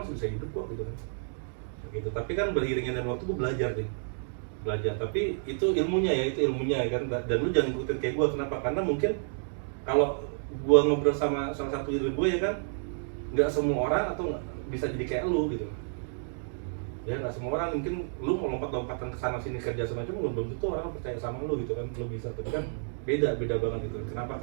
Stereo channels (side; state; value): left; silent; digital silence